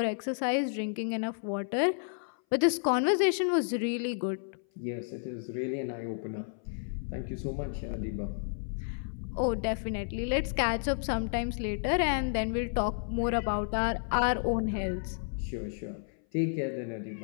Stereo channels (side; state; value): right; silent; 57 dB below the other